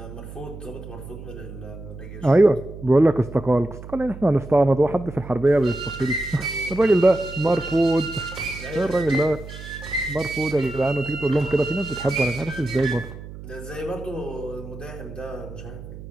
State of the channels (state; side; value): noise; right; hum, 13 dB below the sound